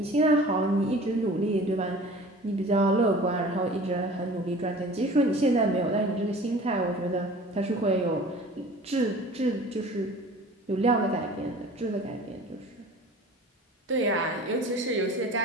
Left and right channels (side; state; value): both; normal; correlation 0.43